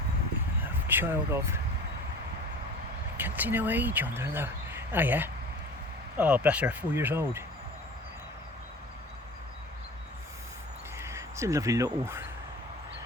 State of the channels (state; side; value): normal; both; correlation 0.40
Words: A child of, I can't see no age on there though. Oh yeah. Oh, bless her, 4 years old. It's a lovely little,